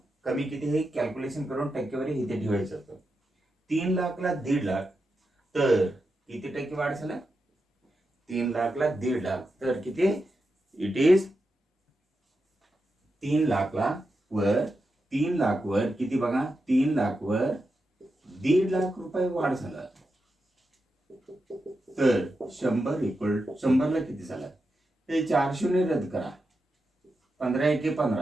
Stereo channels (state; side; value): normal; both; correlation 0.88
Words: कमी किती हे कॅल्क्युलेशन करून टक्केवारी इथे ठेवायचं होतं. 3 लाखला 1.5 लाख तर किती टक्के वाढ झाला? 3 लाखला 1.5 लाख तर किती? इट इज 3 लाखला वर 3 लाख वर किती बघा? 3 लाख वर ₹1,50,000 वाढ झाला, तर 100 ला किती झालं? हे 4 शून्य रद्द करा, 15 एके